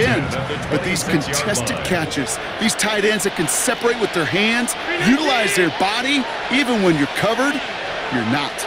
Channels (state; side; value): identical; both; correlation 1.00